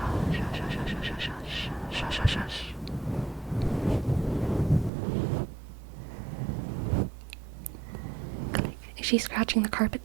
Is she scratching the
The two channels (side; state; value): left; drops out; at 4.9 s